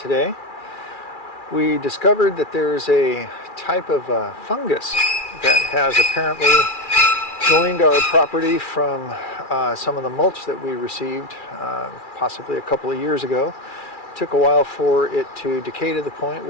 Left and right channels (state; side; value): late; right; 2.4 ms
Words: We discovered that there's a type of fungus that has apparently joined our property from some of the mulch that we received possibly a couple of years ago. It took a while for it to decay to the point